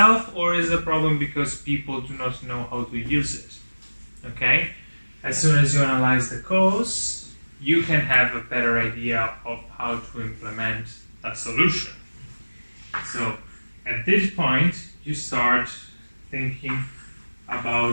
or is it a problem because people do not know how to use it? Okay? As soon as you analyze the cause, you can have a better idea of how to implement a solution. So, at this point, you start thinking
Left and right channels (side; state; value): both; inverted; correlation -1.00